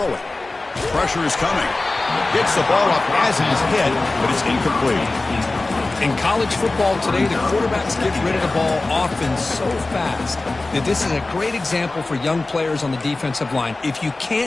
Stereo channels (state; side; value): quieter; right; 3.2 dB